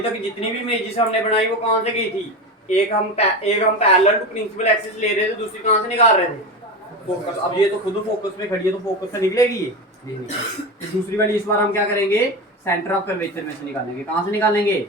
तक जितनी भी इमेजेस हमने बनाई वो कहाँ से गई थी? एक हम पैरेलल टू प्रिंसिपल एक्सिस ले रहे थे, दूसरी कहाँ से निकाल रहे थे? फोकस। अब ये तो खुद फोकस में खड़ी है तो फोकस से निकलेगी ये? नहीं निकलेगी। तो दूसरी वाली इस बार हम क्या करेंगे? सेंटर ऑफ कर्वेचर में से निकालेंगे। कहाँ से निकालेंगे?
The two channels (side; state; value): both; normal; correlation 0.22